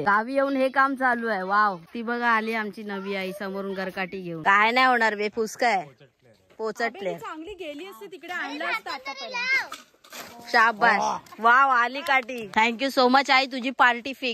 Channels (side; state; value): both; identical; correlation 1.00